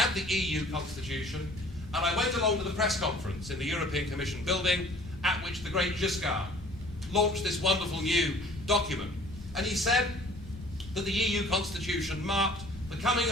the EU constitution, and I went along to the press conference in the European Commission building at which the great Giscard launched this wonderful new document. And he said that the EU constitution marked the coming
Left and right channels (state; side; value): noise; left; rumble, 16 dB below the sound